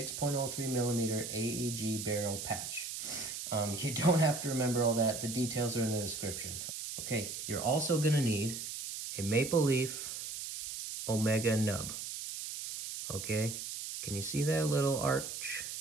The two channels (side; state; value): right; noise; hiss, 6 dB below the sound